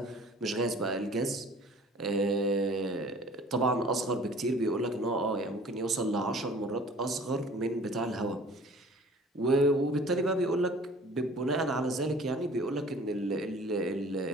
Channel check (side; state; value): both; normal; correlation 0.49